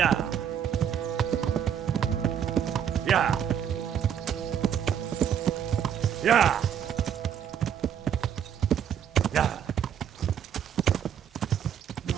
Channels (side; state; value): left; quieter; 8.8 dB